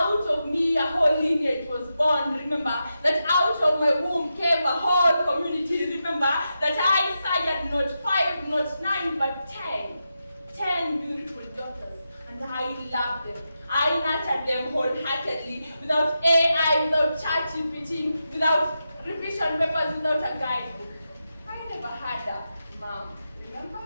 of me a whole lineage was born. Remember that out of my womb came a whole community. Remember that I sired not 5, not 9, but 10 beautiful daughters, and I loved them. I nurtured them wholeheartedly, without AI, without ChatGPT, without revision papers, without a guidebook. I never had a mom, remember?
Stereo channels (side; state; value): both; inverted; correlation -0.88